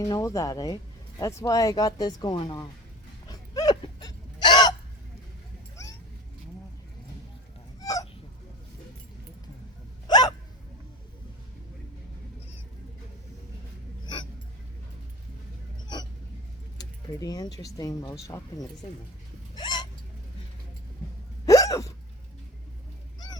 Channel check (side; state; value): both; normal; correlation 0.35